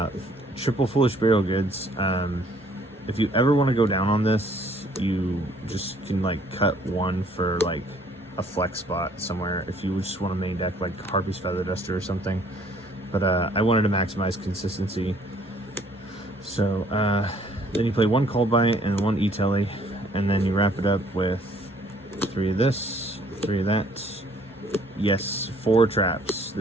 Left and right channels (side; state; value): both; normal; correlation 0.61